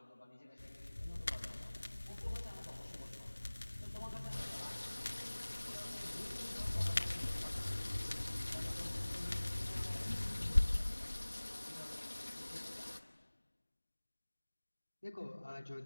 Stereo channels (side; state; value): both; inverted; correlation -1.00